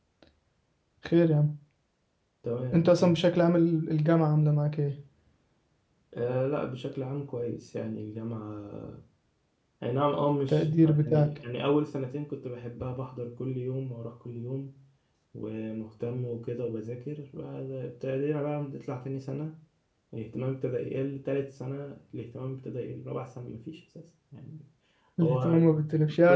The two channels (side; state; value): both; identical; correlation 1.00